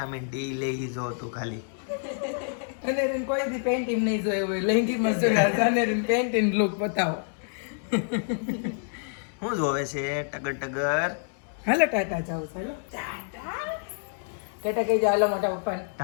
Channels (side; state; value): right; silent; 60 dB below the other